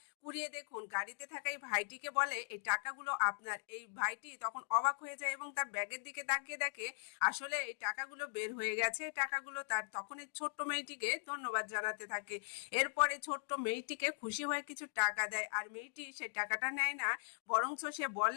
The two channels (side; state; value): right; silent; digital silence